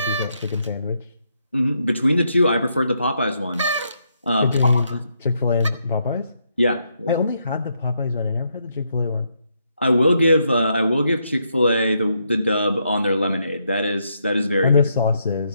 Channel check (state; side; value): inverted; both; correlation -0.78